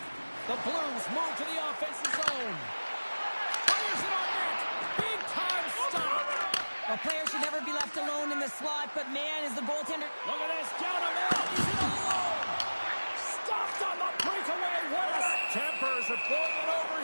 The Blues move to the offensive zone. Fires it on net. Big time stop. A player should never be left alone in the slot, but man, is the goaltender... Look at this. Down him out. He's in alone. Stopped on the breakaway. What a... Tempers are boiling over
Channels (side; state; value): both; inverted; correlation -1.00